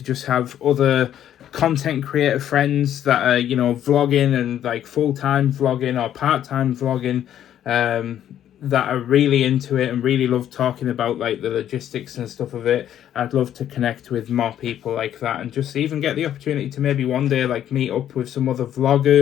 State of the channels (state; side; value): quieter; right; 10.8 dB